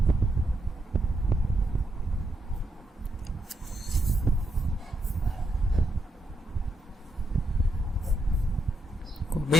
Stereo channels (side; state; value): both; normal; correlation 0.81